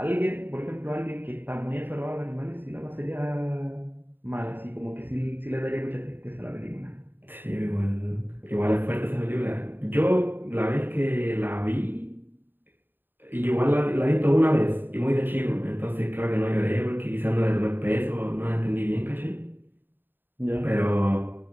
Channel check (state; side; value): late; left; 0.093 ms